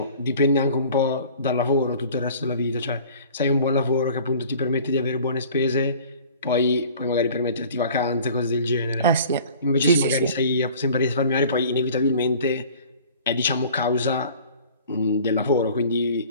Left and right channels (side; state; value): both; inverted; correlation -0.47